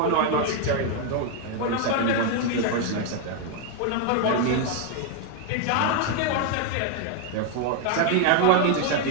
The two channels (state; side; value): different; both; correlation 0.01